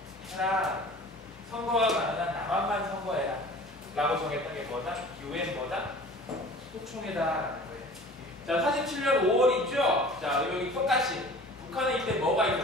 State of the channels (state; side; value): normal; both; correlation 0.44